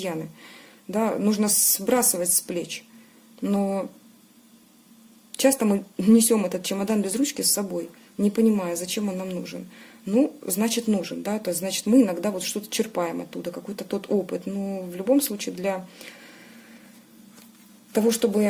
да, нужно сбрасывать с плеч. Но часто мы несем этот чемодан без ручки с собой, не понимая, зачем он нам нужен. Ну, значит, нужен, да, то есть, значит, мы иногда вот что-то черпаем оттуда, какой-то тот опыт. Но в любом случае для того,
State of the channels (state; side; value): identical; both; correlation 1.00